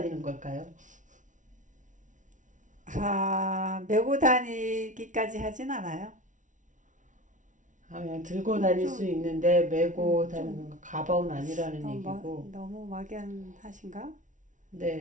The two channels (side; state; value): left; late; 0.37 ms